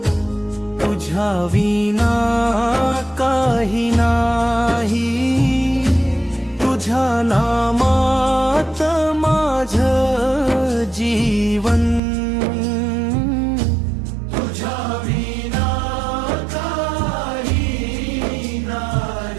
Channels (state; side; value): drops out; left; at 12.0 s